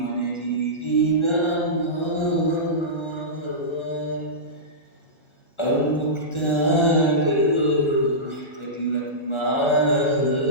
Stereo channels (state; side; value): late; right; 1.4 ms